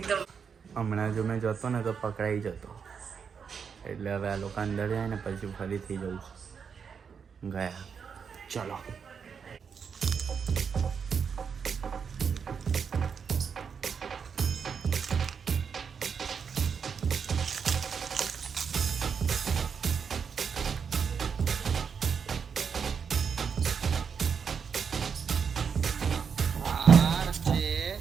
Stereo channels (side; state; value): left; quieter; 6.5 dB